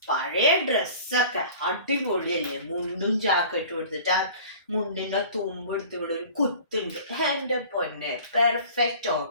പഴയ ഡ്രസ്സൊക്കെ അടിപൊളിയല്ലേ, മുണ്ടും ജാക്കറ്റും എടുത്തിട്ട് ആ മുണ്ടിന്റെ തുമ്പ് എടുത്ത് ഇവിടെ ഒരു കുത്തുണ്ട്. എൻ്റെ പൊന്നെ, പെർഫെക്റ്റ്.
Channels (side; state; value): both; inverted; correlation -0.44